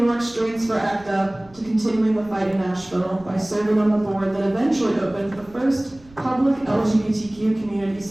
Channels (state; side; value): noise; right; rumble, 25 dB below the sound